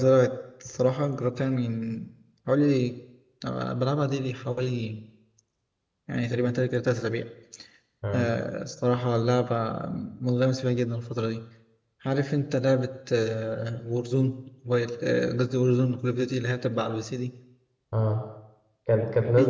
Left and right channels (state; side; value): identical; both; correlation 1.00